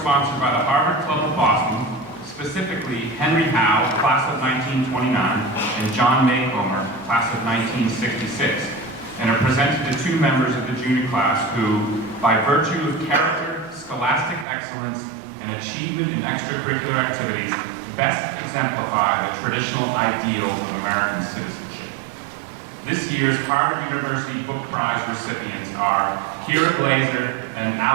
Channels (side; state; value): left; drops out; at 14.5 s